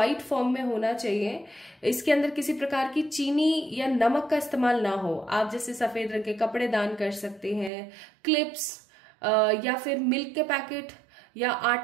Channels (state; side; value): drops out; left; at 7.7 s